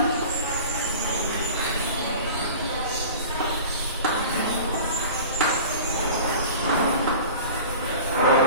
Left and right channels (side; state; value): both; inverted; correlation -0.39